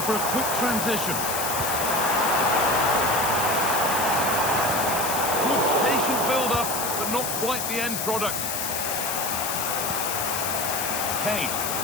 a quick transition. Good patient build-up, but not quite the end product. Kane.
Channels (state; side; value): noise; left; hiss, 2 dB below the sound